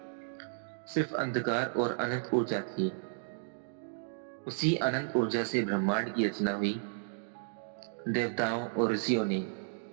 सिर्फ अंधकार और अनंत ऊर्जा थी। उसी अनंत ऊर्जा से ब्रह्मांड की रचना हुई। देवताओं और ऋषियों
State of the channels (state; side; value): silent; left; digital silence